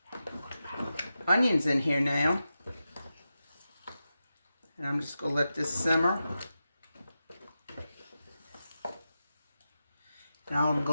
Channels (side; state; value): both; inverted; correlation -0.91